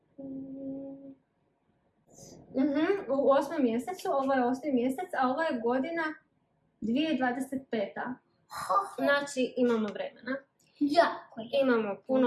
U 8. mjesecu, ovo je 8. mjesec, a ovo je godina 2025. Znači imamo vremena. Jako je. Imamo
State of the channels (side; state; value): both; identical; correlation 1.00